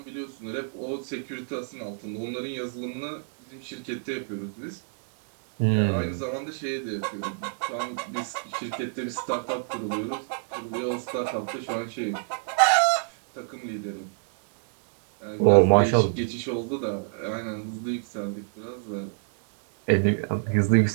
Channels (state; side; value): silent; left; 60 dB below the other